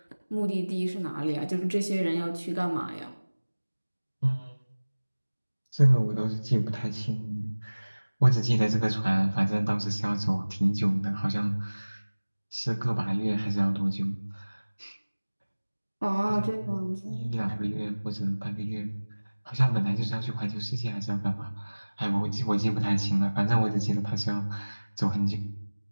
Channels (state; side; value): inverted; both; correlation -1.00